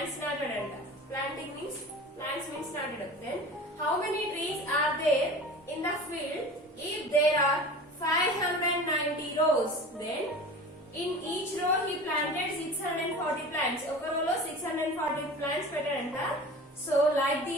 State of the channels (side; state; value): both; normal; correlation 0.37